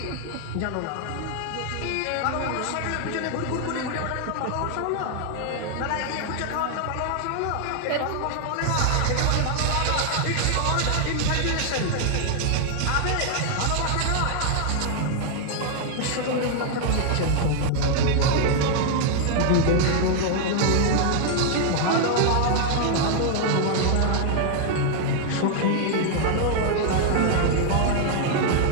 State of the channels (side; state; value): both; different; correlation 0.00